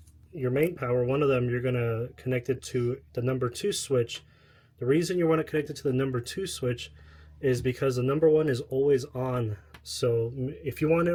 main power, one of them, you're going to connect it to the number 2 switch. The reason you want to connect it to the number 2 switch is because the number 1 is always on. So if you want it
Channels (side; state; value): both; identical; correlation 1.00